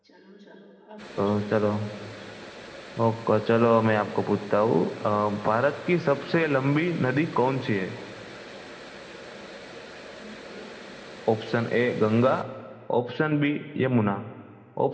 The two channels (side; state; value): both; identical; correlation 1.00